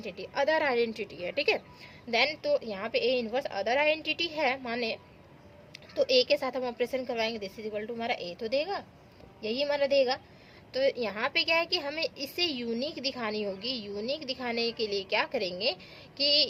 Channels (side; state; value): both; identical; correlation 1.00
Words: अदर आइडेंटिटी है, ठीक है। देन तो यहाँ पे ए इनवर्स अदर आइडेंटिटी है माने, तो ए के साथ हम ऑपरेशन करवाएंगे, दिस इज इक्वल टू हमारा ए तो देगा, यही हमारा देगा। तो यहाँ पे क्या है कि हमें इसे यूनिक दिखानी होगी। यूनिक दिखाने के लिए क्या करेंगे